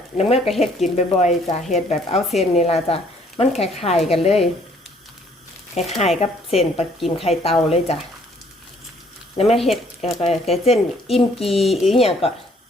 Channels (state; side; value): normal; both; correlation 0.62